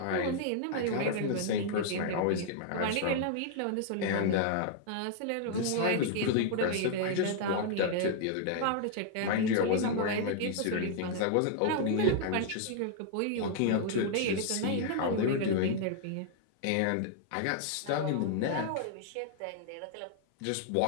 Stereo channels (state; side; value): different; both; correlation -0.01